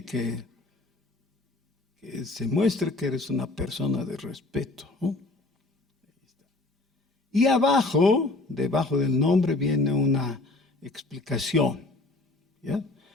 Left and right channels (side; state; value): right; quieter; 3.1 dB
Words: se muestre que eres una persona de respeto, ¿no? Y abajo, debajo del nombre, viene una explicación, ¿ya?